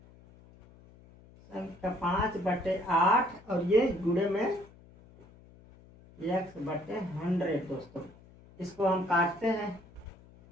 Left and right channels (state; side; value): noise; left; hum, 24 dB below the sound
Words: संख्या 5/8 और ये गुणे में x/100। दोस्तों इसको हम काटते हैं